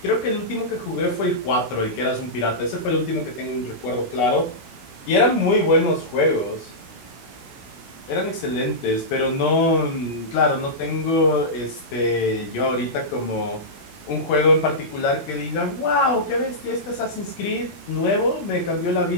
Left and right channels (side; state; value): right; late; 16 ms